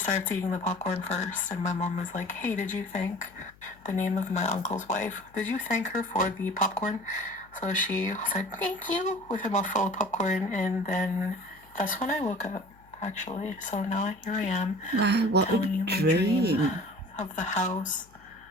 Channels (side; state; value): left; noise; hum, 27 dB below the sound